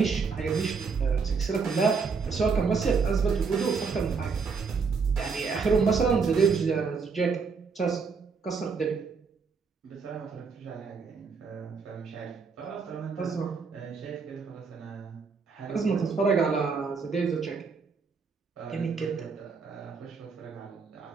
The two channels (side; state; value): left; quieter; 5.2 dB